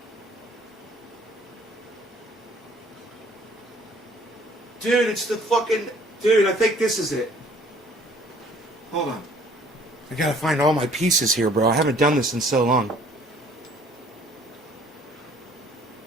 Dude, it's the fucking... Dude, I think this is it. Hold on. I gotta find all my pieces here, bro. I haven't done this in so long.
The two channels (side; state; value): both; normal; correlation 0.57